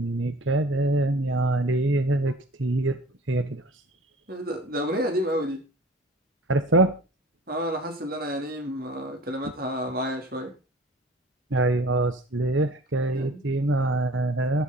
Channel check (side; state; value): both; normal; correlation 0.45